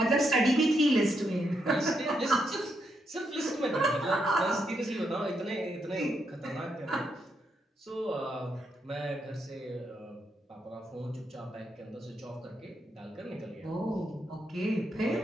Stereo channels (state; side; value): normal; both; correlation 0.80